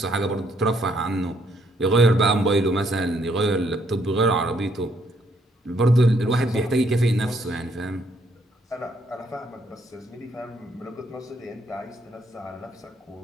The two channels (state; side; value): normal; both; correlation 0.70